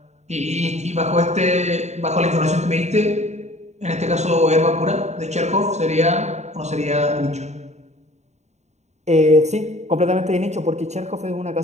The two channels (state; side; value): late; left; 0.33 ms